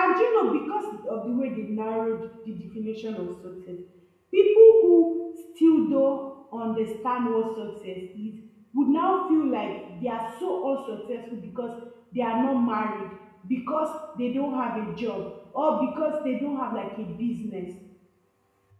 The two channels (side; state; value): both; identical; correlation 1.00